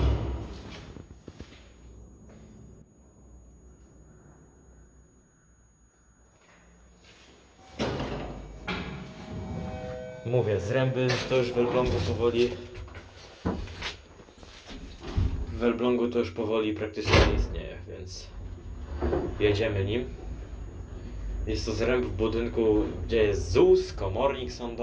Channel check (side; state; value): both; identical; correlation 1.00